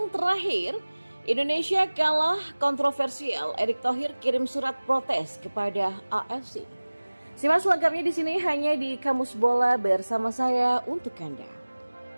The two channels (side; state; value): both; inverted; correlation -1.00